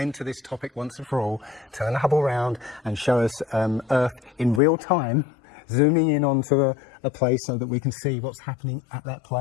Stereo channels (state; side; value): drops out; right; at 4.6 s